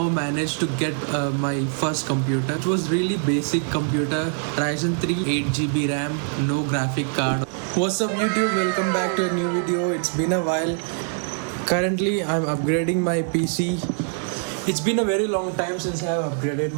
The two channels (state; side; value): silent; left; 60 dB below the other